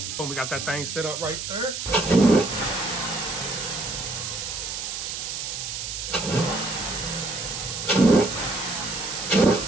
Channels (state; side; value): noise; right; hiss, 5 dB below the sound